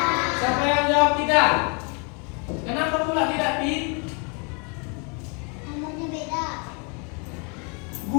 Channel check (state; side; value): quieter; right; 35.1 dB